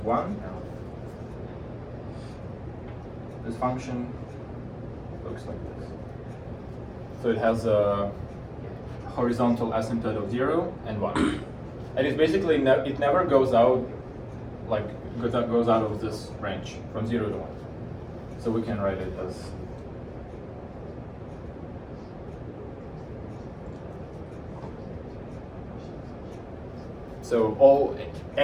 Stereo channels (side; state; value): both; identical; correlation 1.00